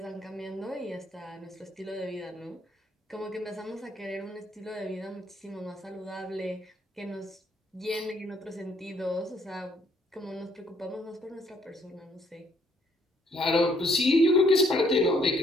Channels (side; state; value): both; normal; correlation 0.67